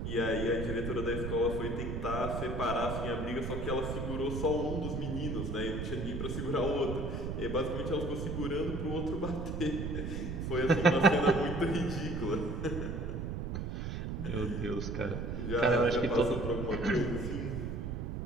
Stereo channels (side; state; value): right; noise; rumble, 3 dB below the sound